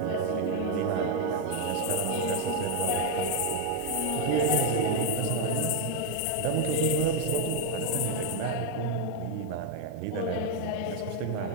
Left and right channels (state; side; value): different; both; correlation 0.01